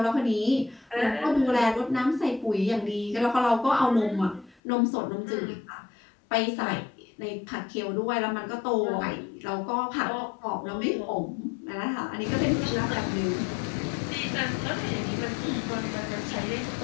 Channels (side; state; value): right; drops out; at 4.5 s